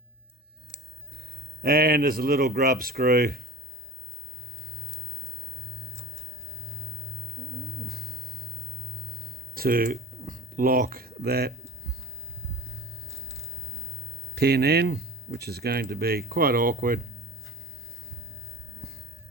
And there's a little grub screw to lock that pin in, which is going to be quite awkward.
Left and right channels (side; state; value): both; normal; correlation 0.38